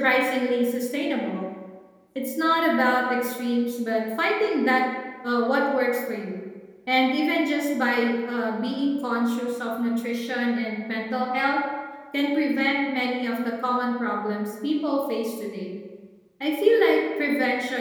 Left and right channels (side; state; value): both; identical; correlation 1.00